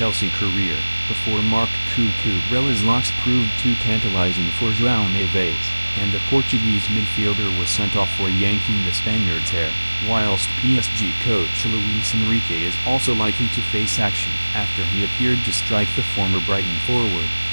career, before Marc Cucurella's locks proved too tantalizing for Joao Neves, and the Portuguese midfielder was sent off for yanking the Spaniard's hair, whilst PSG coach Luis Enrique is also likely to face action after he appeared to strike the former Brighton forward.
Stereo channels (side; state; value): both; inverted; correlation -1.00